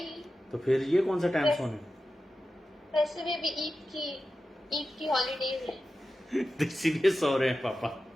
तो फिर ये कौन सा टाइम सोने? वैसे भी अभी ईद की हॉलीडेज है। इसीलिए सो रहे हैं पापा।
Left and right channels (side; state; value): both; normal; correlation 0.93